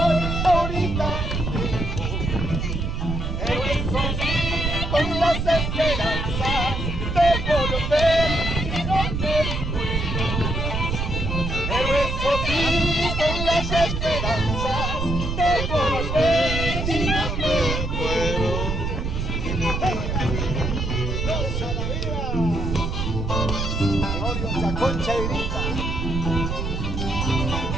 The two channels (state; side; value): noise; right; rumble, 2 dB below the sound